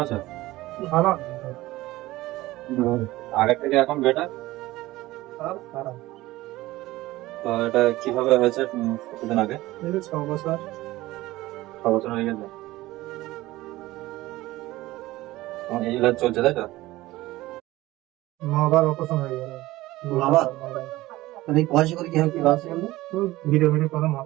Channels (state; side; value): quieter; left; 17.9 dB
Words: আছো? ভালো। আগের থেকে এখন বেটার? খারাপ। তো এটা কিভাবে হয়েছে? কতদিন আগে? এই যে 6 বছর। 6 বছর হয়ে গেছে। তোমার এই ইলাজ চলছে তাই তো? আবার অপারেশন হয়ে গেল। আবার? মানে পয়সা করে কি হয় কি বাস গেল ভিডিও করে